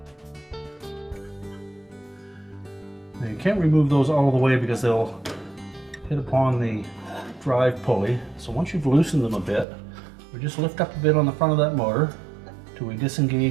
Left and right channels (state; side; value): drops out; left; at 9.7 s